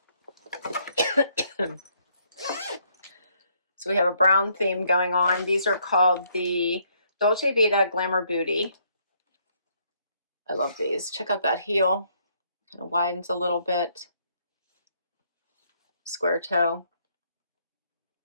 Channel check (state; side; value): inverted; both; correlation -0.69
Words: So we have a brown theme going on. These are called the Dolce Vita Glamor Bootie. I love these. Check out that heel. Kind of widens a little bit. Square toe.